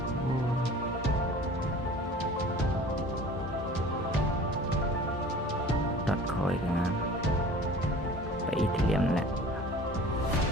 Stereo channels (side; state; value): both; normal; correlation 0.44